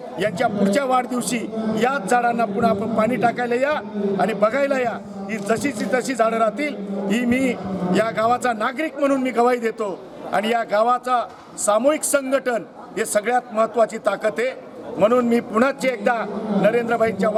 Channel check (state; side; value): identical; both; correlation 1.00